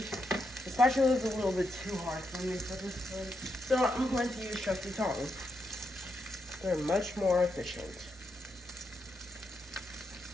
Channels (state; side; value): normal; both; correlation 0.82